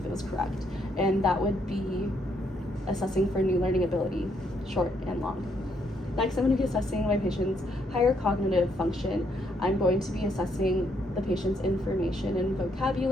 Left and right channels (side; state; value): both; normal; correlation 0.73